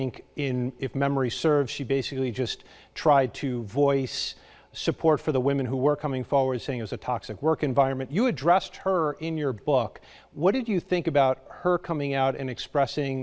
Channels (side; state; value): both; identical; correlation 1.00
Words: if memory serves, she basically just tried to voice support for the women who were coming forward, saying it was a toxic work environment. You addressed her in your book. What did you think about her coming out and